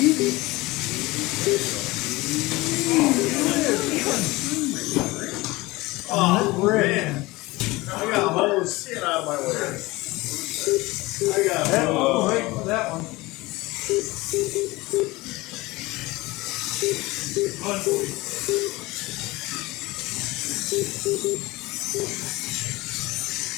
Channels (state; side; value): quieter; right; 21.2 dB